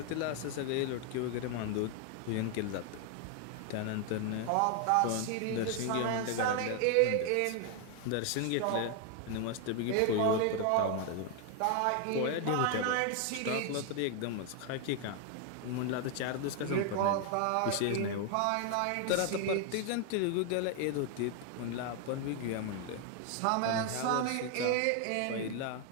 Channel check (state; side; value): different; both; correlation 0.00